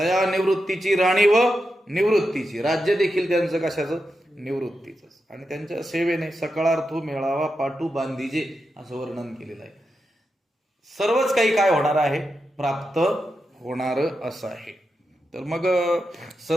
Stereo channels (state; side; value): normal; both; correlation 0.88